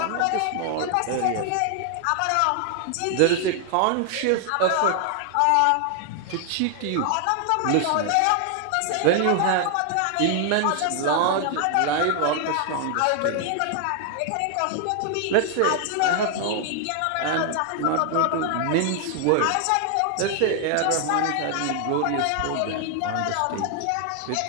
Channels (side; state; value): both; different; correlation 0.00